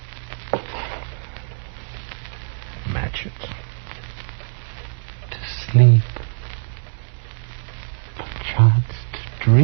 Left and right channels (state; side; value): silent; left; 63 dB below the other